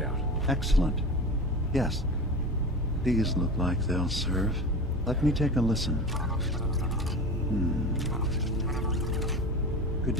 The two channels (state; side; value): normal; both; correlation 0.31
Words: Excellent. Yes. These look like they'll serve. Let me take a listen. Good